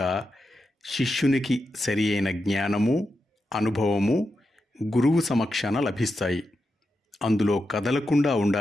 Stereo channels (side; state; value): both; normal; correlation 0.88